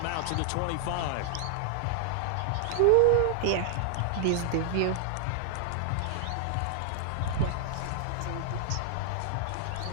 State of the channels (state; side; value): different; both; correlation 0.00